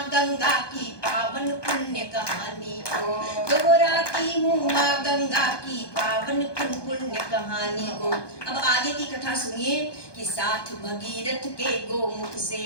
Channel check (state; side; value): late; right; 1.2 ms